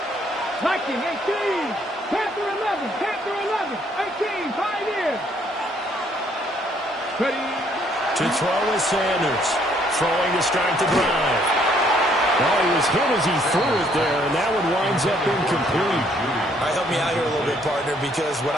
Viking 18, Panther 11, 18, Pioneers. Ready. To throw is Sanders, throwing to start the drive. Well, he was hit as he threw it there, and that one winds up incomplete. All right, help me out here a little bit, partner, because what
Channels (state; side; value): normal; both; correlation 0.66